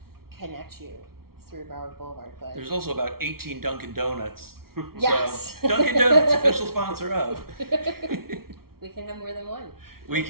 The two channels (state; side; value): late; left; 0.94 ms